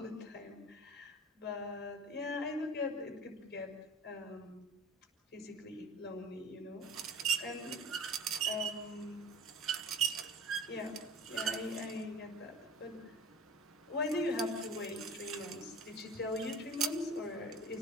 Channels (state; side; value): normal; both; correlation 0.39